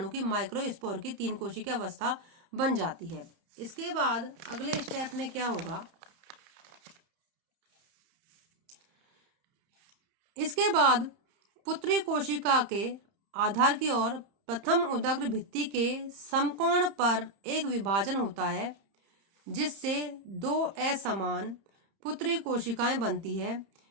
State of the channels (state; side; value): late; left; 30 ms